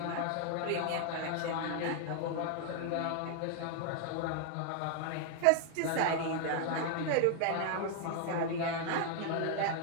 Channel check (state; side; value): different; both; correlation 0.00